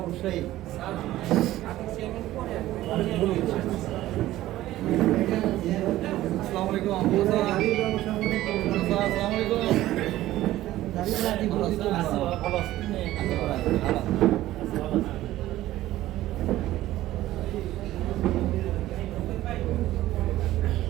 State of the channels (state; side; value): quieter; left; 15.1 dB